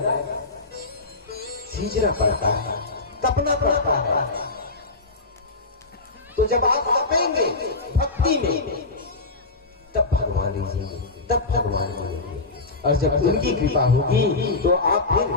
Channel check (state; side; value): quieter; right; 3.4 dB